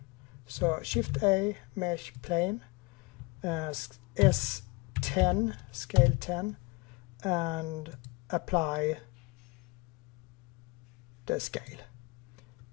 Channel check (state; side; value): quieter; right; 26.7 dB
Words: So Shift A, mesh plane, S10, scale 10, and apply the scale.